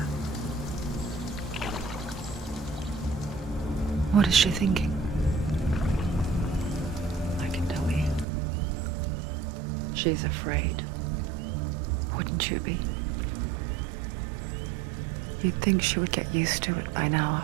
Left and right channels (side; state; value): left; drops out; at 8.2 s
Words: What is she thinking? I can tell you. She's afraid. Wouldn't you be? You'd think she would get used to it by now